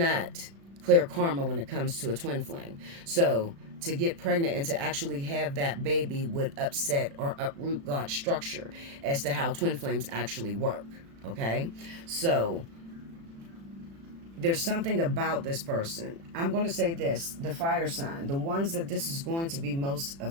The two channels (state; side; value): late; left; 36 ms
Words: clear karma when it comes to a twin flame. So to get pregnant and to actually have that baby would upset or uproot God's structure as to how twin flames actually work. Okay, so there's something about this person. I'm going to say this, the fire sign, the ones that this is going to be most